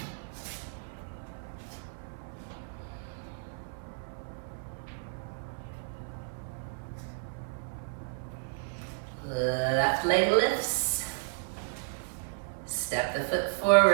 Left leg lifts. Step the foot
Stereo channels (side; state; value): left; silent; 56 dB below the other